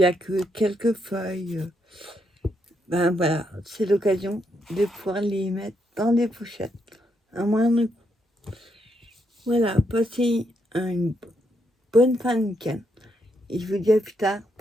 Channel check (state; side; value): normal; both; correlation 0.78